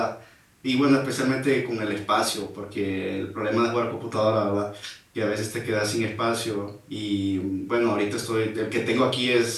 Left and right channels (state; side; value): identical; both; correlation 1.00